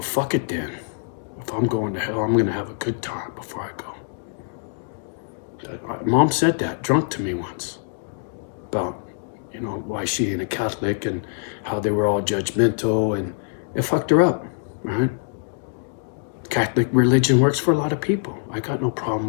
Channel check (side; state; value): right; silent; digital silence